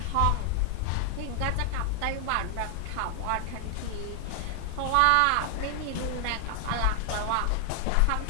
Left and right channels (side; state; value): both; different; correlation 0.00